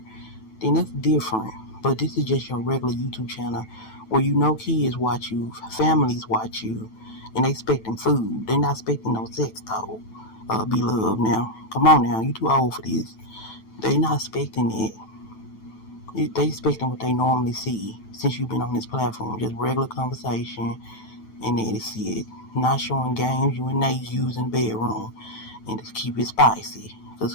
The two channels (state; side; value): late; right; 9.1 ms